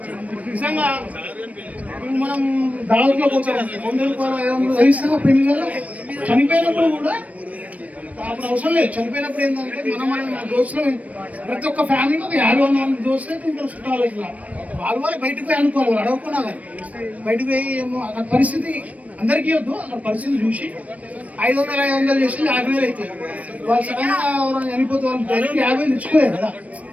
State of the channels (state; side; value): late; left; 0.068 ms